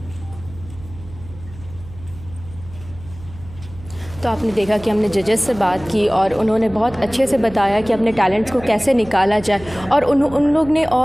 तो आपने देखा कि हमने जजेस से बात की और उन्होंने बहुत अच्छे से बताया कि अपने टैलेंट्स को कैसे निकाला जाए, और उन लोग ने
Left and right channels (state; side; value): noise; right; hum, 17 dB below the sound